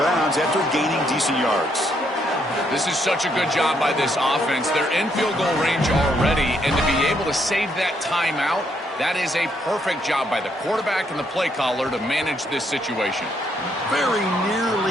bounds after gaining decent yards. This is such a good job by this offense. They're in field goal range already, and to be able to save that timeout, that is a perfect job by the quarterback and the play caller to manage this situation. Very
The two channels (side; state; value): both; normal; correlation 0.73